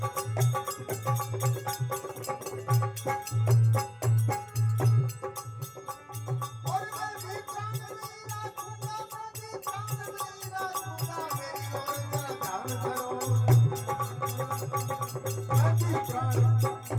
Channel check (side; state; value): both; identical; correlation 1.00